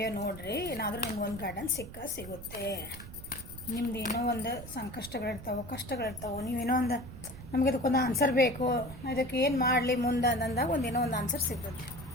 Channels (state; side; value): noise; right; rumble, 14 dB below the sound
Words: ನೋಡಿರಿ, ಏನಾದರೂ ನಿಮ್ಗೆ ಒಂದು ಗೈಡೆನ್ಸ್ ಸಿಗುತ್ತೆ. ನಿಮ್ದು ಏನೋ ಒಂದು ಸಂಕಷ್ಟಗಳಿರ್ತಾವೆ, ಕಷ್ಟಗಳಿರ್ತಾವೆ, ನೀವೇನೋ ಒಂದು ನಮಗೆ ಅದಕ್ಕೊಂದು ಆನ್ಸರ್ ಬೇಕು, ಇದಕ್ಕೆ ಏನು ಮಾಡಲಿ ಮುಂದೆ ಅಂದಾಗ ಒಂದೇನೋ ಒಂದು ಆನ್ಸರ್ ಸಿಗ್ತದೆ.